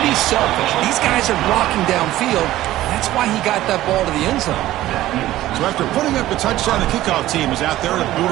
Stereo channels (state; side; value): quieter; left; 15.1 dB